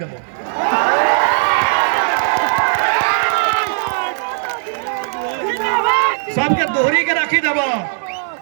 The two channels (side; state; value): left; silent; 61 dB below the other